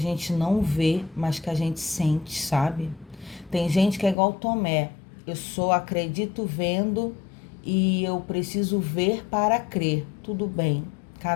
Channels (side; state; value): right; drops out; at 4.2 s